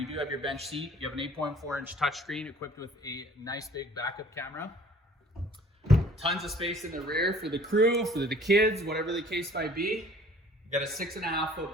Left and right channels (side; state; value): both; normal; correlation 0.52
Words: do have your bench seat. You have an 8.4-inch touchscreen equipped with a nice big backup camera. Tons of space in the rear for the crew, for the kids, whatever the case might be. You got a